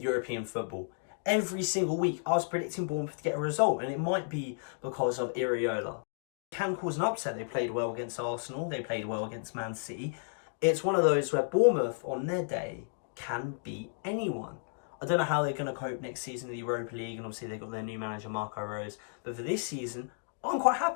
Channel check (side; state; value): right; silent; digital silence